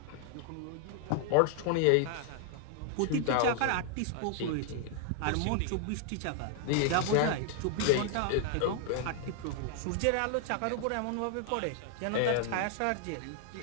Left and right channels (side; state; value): both; different; correlation 0.00